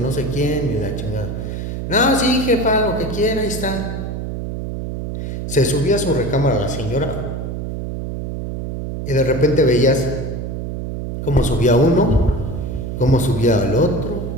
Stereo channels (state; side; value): noise; right; hum, 5 dB below the sound